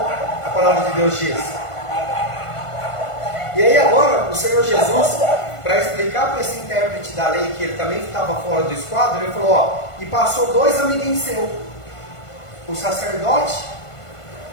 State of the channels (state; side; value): late; right; 1.5 ms